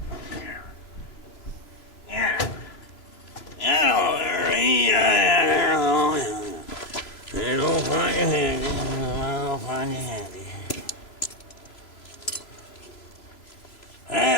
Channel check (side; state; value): right; late; 3.0 ms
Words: It'll find you handy. I'll find you handy.